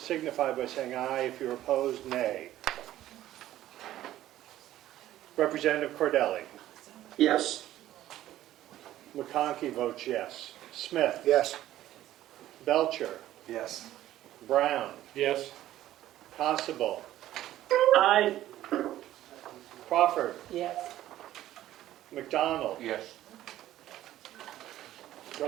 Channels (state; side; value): quieter; left; 13.7 dB